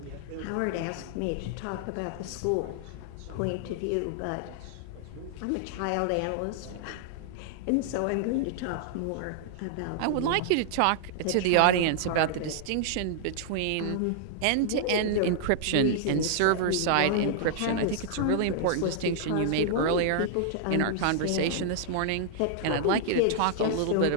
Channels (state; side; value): different; both; correlation -0.01